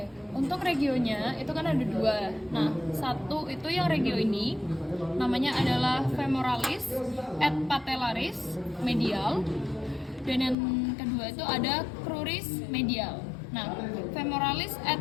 untuk regionya itu kan ada 2. Nah, satu itu yang regio ini namanya adalah femoralis et patellaris medial, dan yang kedua itu ada cruris medial. Nah, femoralis et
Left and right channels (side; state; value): right; drops out; at 10.6 s